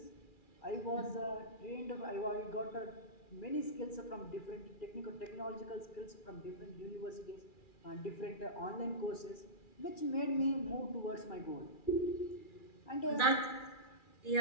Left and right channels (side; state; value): right; late; 2.4 ms